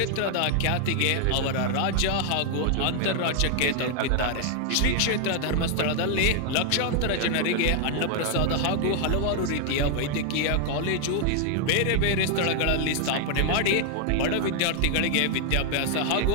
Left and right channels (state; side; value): different; both; correlation 0.00